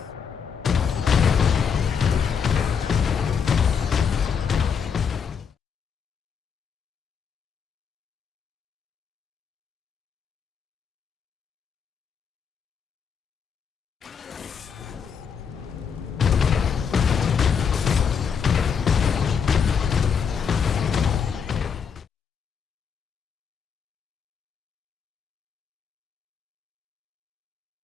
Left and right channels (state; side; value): quieter; right; 6.7 dB